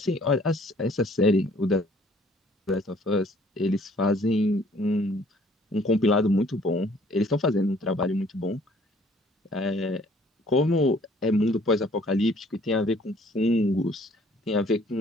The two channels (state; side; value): normal; both; correlation 0.58